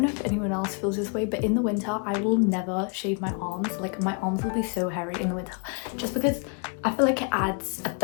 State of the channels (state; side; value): quieter; right; 37.3 dB